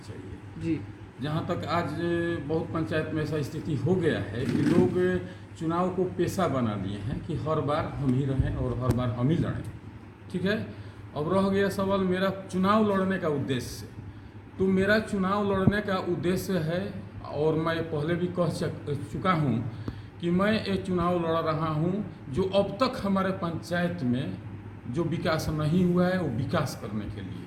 चाहिए। जी जहाँ तक आज बहुत पंचायत में ऐसा स्थिति हो गया है कि लोग चुनाव को पेशा बना लिए हैं कि हर बार हम ही रहें और हर बार हम ही लड़ें। ठीक है। अब रह गया सवाल मेरा चुनाव लड़ने का उद्देश्य। तो मेरा चुनाव लड़ने का उद्देश्य है, और मैं पहले भी कह चुका हूँ कि मैं ये चुनाव लड़ रहा हूँ जो अब तक हमारे पंचायत में जो विकास नहीं हुआ है वो विकास करने के लिए।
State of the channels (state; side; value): identical; both; correlation 1.00